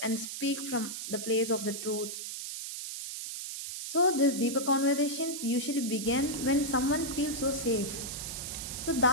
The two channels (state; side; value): noise; right; hiss, 6 dB below the sound